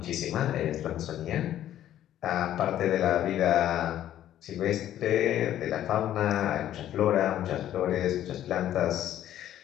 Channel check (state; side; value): quieter; right; 11.9 dB